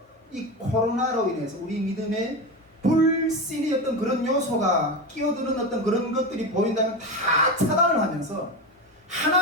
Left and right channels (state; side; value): normal; both; correlation 0.20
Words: 이 코로나로 인해서 우리 믿음에 불신이 어떤 그런 요소가 끼어드는 어떤 그런 것들이 보인다면 다 차단을 하면서